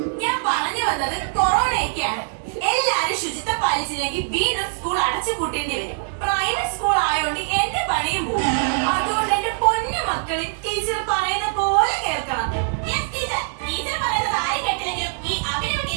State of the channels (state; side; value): silent; left; digital silence